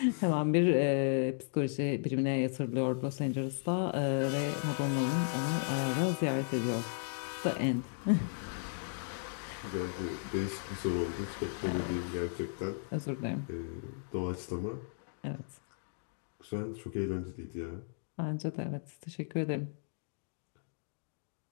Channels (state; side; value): silent; right; digital silence